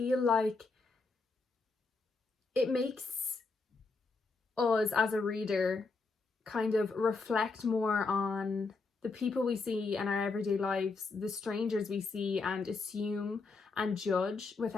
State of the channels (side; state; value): right; quieter; 4.1 dB